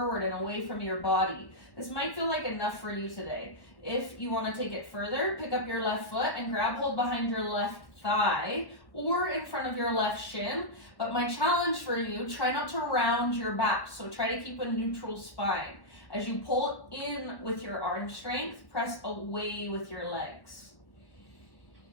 and away from your body. This might feel like enough for you today. If you want to take it further, pick up your left foot and grab hold behind your left thigh or in front of your left shin. But my challenge for you, try not to round your back. So try to keep a neutral spine. As you pull in with your arm strength, press away with your legs.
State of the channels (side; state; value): right; late; 1.1 ms